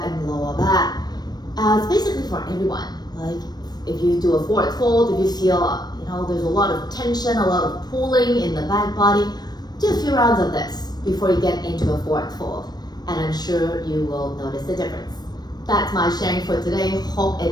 and lower back. It's basically for everyone. Like if you do a forward fold, if you feel, there's a lot of tension, a lot of pulling in the back body, do a few rounds of this before you get into a forward fold. And I'm sure you will notice the difference. That's my sharing for today. Hope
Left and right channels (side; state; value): right; late; 0.19 ms